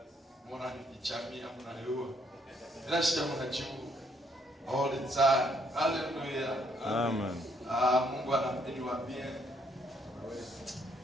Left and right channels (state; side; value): normal; both; correlation 0.70